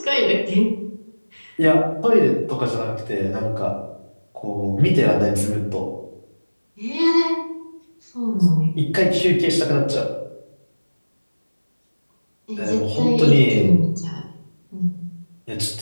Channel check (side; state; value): both; inverted; correlation -1.00